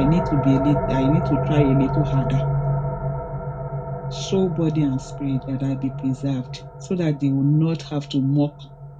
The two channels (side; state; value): both; identical; correlation 1.00